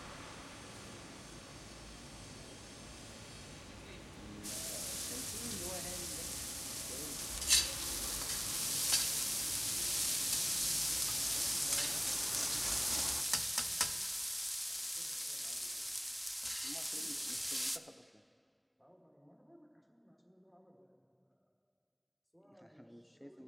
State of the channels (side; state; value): both; identical; correlation 1.00